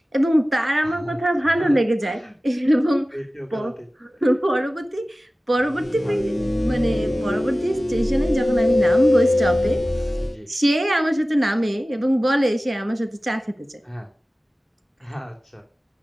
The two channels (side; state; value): both; normal; correlation 0.97